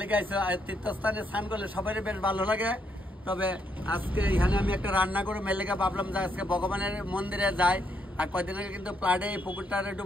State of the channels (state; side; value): normal; both; correlation 0.75